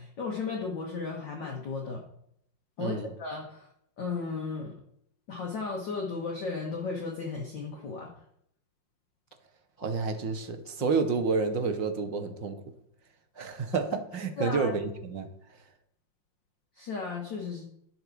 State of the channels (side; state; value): right; late; 5.6 ms